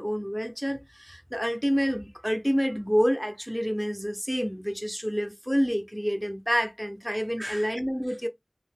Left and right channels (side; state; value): both; identical; correlation 1.00